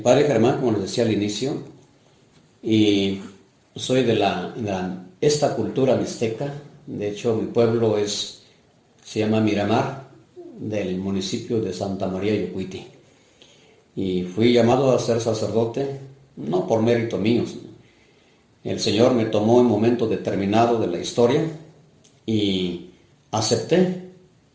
Germán, como les decía al inicio, y soy de esta cultura mixteca. De hecho, mi pueblo se llama Miramar, del municipio de Santa María Yocuiti. Y fui llamado a ser sacerdote, no por mérito mío. El Señor me tomó en un momento determinado de la historia y acepté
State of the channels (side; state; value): both; identical; correlation 1.00